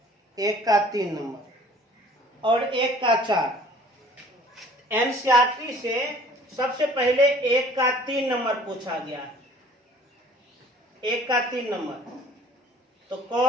1 का 3 नंबर और 1 का 4। NCERT से सबसे पहले 1 का 3 नंबर पूछा गया है, 1 का 3 नंबर, तो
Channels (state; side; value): normal; both; correlation 0.52